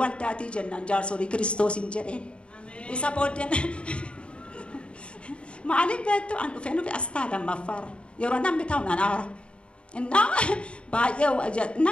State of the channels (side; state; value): right; late; 0.057 ms